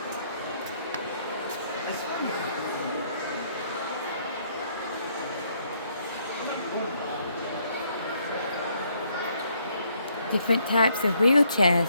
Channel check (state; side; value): inverted; both; correlation -0.70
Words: Different types of wheelchairs.